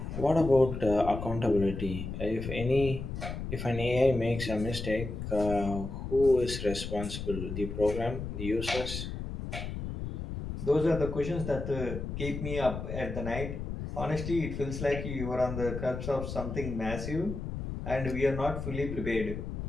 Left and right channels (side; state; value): left; noise; rumble, 6 dB below the sound